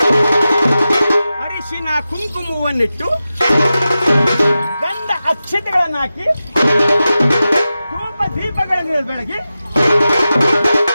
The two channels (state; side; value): inverted; both; correlation -0.93